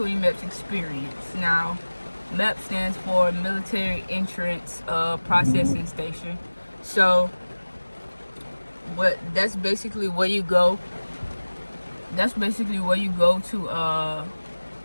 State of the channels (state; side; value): inverted; both; correlation -1.00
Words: MEPS experience. Now, MEPS stands for Military Entrance Processing Station. So, that's basically where you go. That's basically where you go to